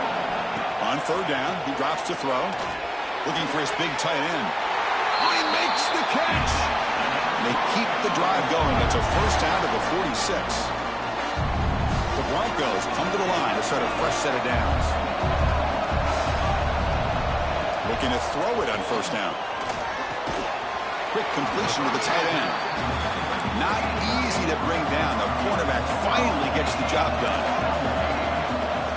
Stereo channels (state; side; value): identical; both; correlation 1.00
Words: On third down, he drops to throw. Looking for his big tight end. Oh, he makes the catch. They keep the drive going. That's a first down to the 46. The Broncos come to the line to start a fresh set of downs. Looking to throw it on first down. Quick completion to the tight end. Not easy to bring down. The cornerback finally gets the job done.